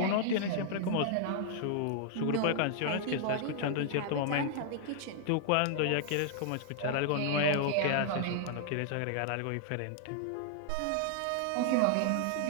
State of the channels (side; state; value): both; different; correlation -0.01